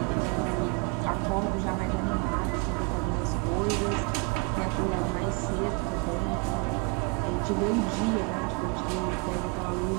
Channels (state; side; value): quieter; left; 30.4 dB